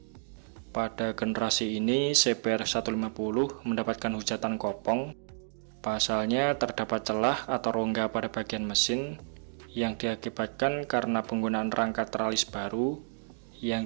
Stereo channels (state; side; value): silent; left; digital silence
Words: Pada generasi ini, CBR 150 mendapatkan hujatan kopong. Pasalnya terdapat celah atau rongga pada bagian mesin yang diakibatkan karena penggunaan rangka teralis baru